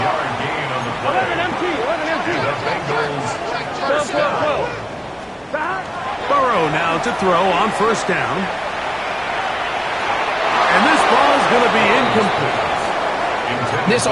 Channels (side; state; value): both; identical; correlation 1.00